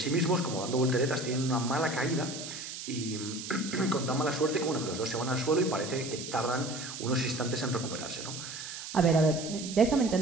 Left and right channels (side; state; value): right; noise; hiss, 9 dB below the sound